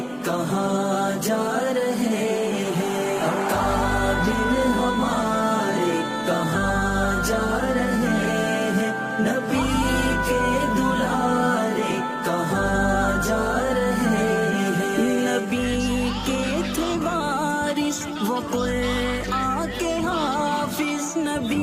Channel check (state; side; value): identical; both; correlation 1.00